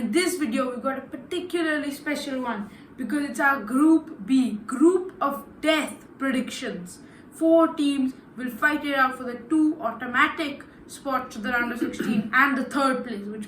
this video, we've got a particularly special one because it's our Group B, Group of Death predictions. 4 teams will fight it out for the 2 automatic spots to the round of 16 and the 3rd place,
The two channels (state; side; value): identical; both; correlation 1.00